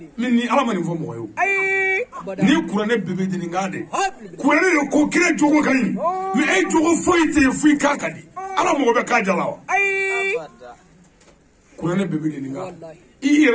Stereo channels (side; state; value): both; identical; correlation 1.00